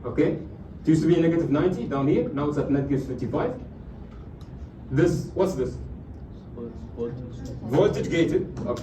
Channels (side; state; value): both; identical; correlation 1.00